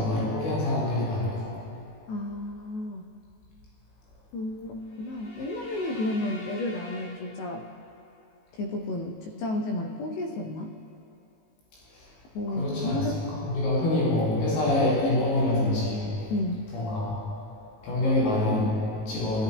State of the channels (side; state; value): right; late; 19 ms